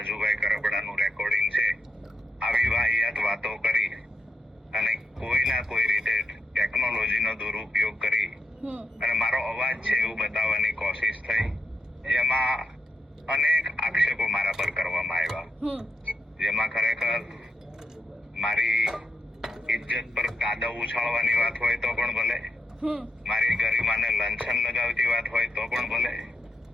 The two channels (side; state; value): both; normal; correlation 0.83